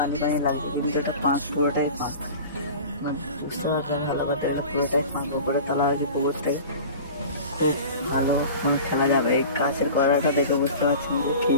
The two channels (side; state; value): both; inverted; correlation -0.38